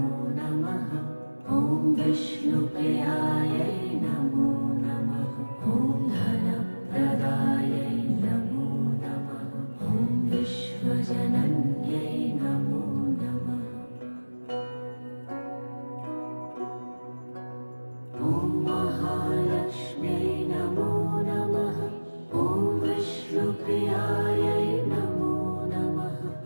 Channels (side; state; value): both; inverted; correlation -1.00